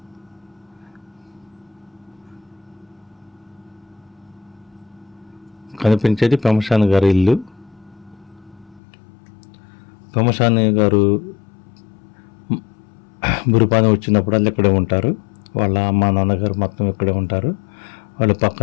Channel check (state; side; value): drops out; right; at 8.8 s